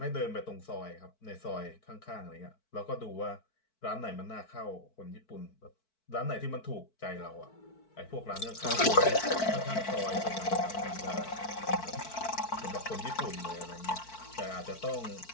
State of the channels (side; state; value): right; late; 4.5 ms